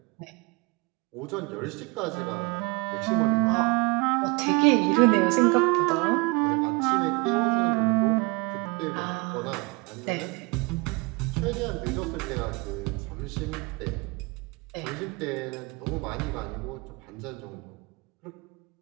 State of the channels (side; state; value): left; quieter; 28.2 dB